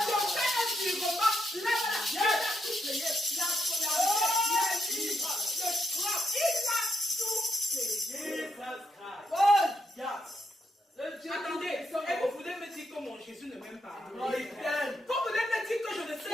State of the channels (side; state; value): both; normal; correlation 0.80